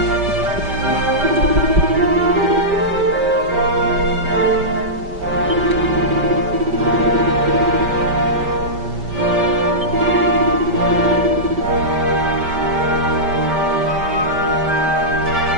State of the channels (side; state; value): left; late; 5.1 ms